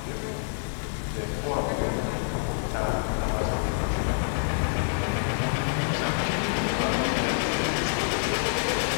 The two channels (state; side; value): silent; right; digital silence